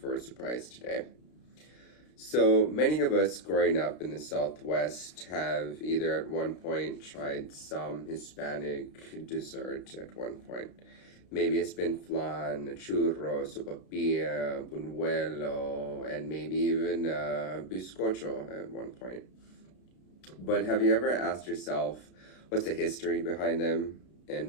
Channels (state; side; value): late; right; 32 ms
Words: a surprise today. So, many of us growing up in the Southwest have either at one point tried some Hispanic dessert at one point. Maybe it's been flan, churros, sopapilla, buñuelo, and maybe even bizcocho at one point. But have you ever asked yourself what's the history behind them